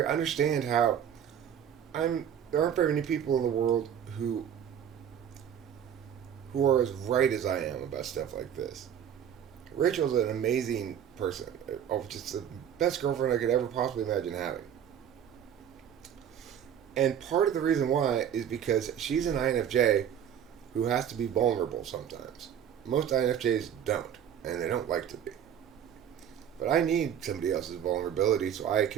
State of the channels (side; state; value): left; quieter; 9.1 dB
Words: how there aren't very many people in the world who are as right as I am about stuff like this. Rachel's an amazing person. Just the best girlfriend I could ever possibly imagine having. And part of the reason why is because she's an INFJ who has to be vulnerable sometimes. Most INFJs don't, and they don't like to be. But I need somebody else's vulnerability so I